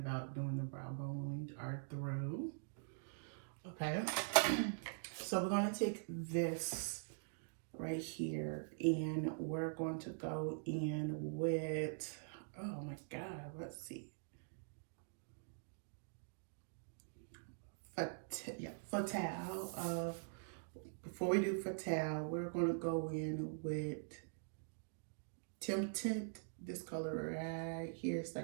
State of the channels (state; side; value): silent; left; digital silence